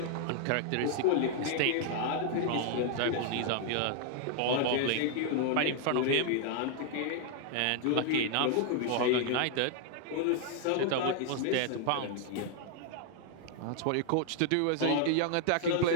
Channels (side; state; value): both; different; correlation 0.00